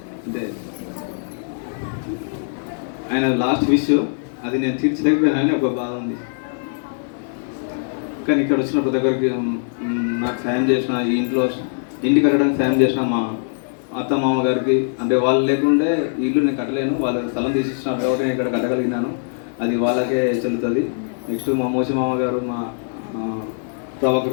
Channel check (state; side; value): silent; right; digital silence